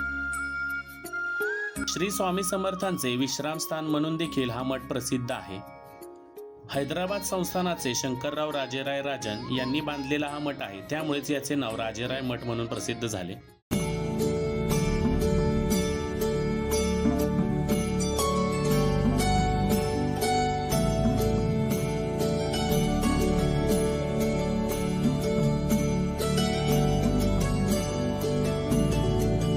श्री स्वामी समर्थांचे विश्रामस्थान म्हणून देखील हा मठ प्रसिद्ध आहे. हैदराबाद संस्थानाचे शंकरराव राजेराय राजन यांनी बांधलेला हा मठ आहे. त्यामुळेच याचे नाव राजेराय मठ म्हणून प्रसिद्ध झाले.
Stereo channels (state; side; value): identical; both; correlation 1.00